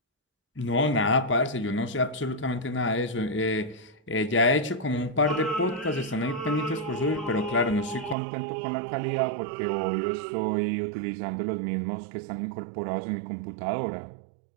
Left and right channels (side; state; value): left; drops out; at 8.2 s